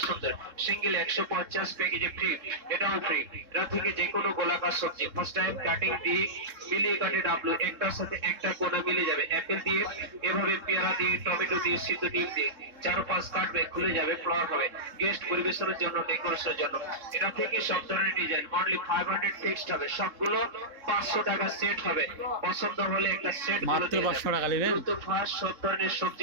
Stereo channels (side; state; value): left; late; 3.7 ms